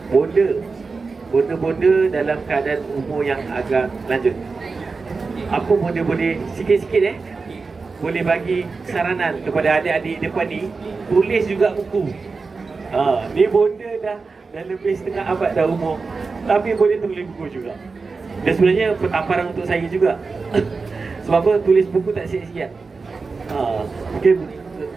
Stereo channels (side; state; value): left; quieter; 4.4 dB